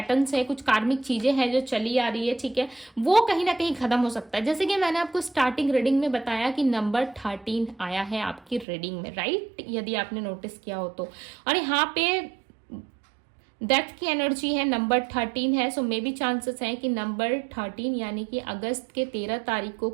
है, कुछ कार्मिक चीजें हैं जो चली आ रही है, ठीक है। वो कहीं ना कहीं खत्म हो सकता है। जैसे कि मैंने आपको स्टार्टिंग रीडिंग में बताया कि नंबर 13 आया है आपकी रीडिंग में, राइट, यदि आपने नोटिस किया हो तो। और यहाँ पे डेथ की एनर्जी है, नंबर 13 है। सो मे बी चांसेस है कि नंबर 13 यानी कि अगस्त के 13 तारीख को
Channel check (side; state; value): left; drops out; at 8.7 s